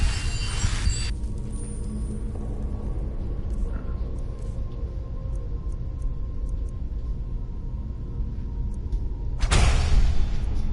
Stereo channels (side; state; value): both; identical; correlation 1.00